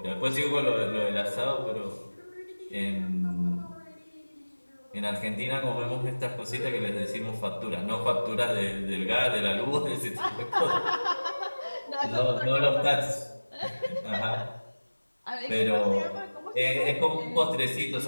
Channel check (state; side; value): inverted; both; correlation -1.00